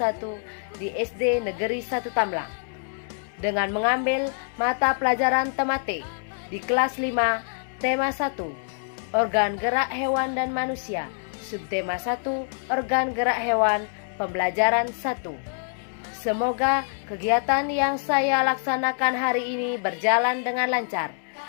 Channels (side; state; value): right; silent; digital silence